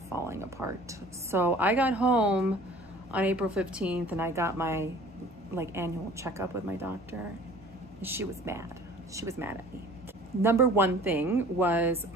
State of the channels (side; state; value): both; normal; correlation 0.48